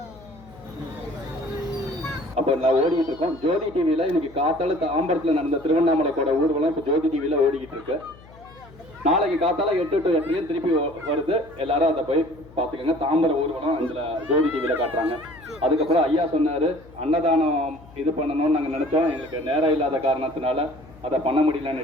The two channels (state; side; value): noise; left; hum, 22 dB below the sound